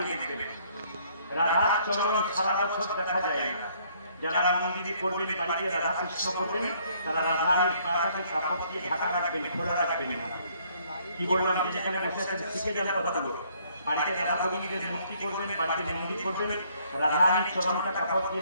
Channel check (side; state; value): both; inverted; correlation -0.64